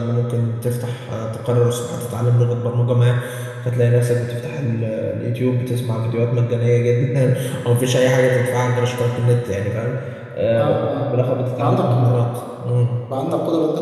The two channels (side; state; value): both; identical; correlation 1.00